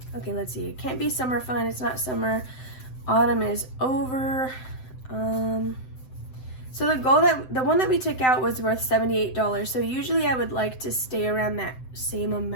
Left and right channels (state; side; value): late; right; 7.8 ms